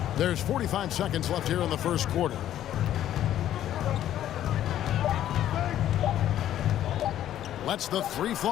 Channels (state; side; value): quieter; right; 11.8 dB